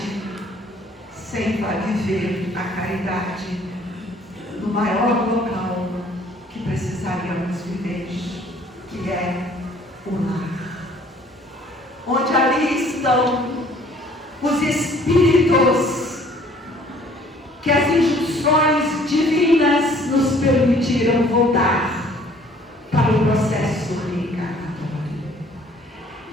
sem viver a caridade no maior local que precisaríamos viver, que é o lar. Onde ali estão os espíritos que as injunções divinas nos permitiram voltar para o processo reencarnatório.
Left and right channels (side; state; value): both; normal; correlation 0.57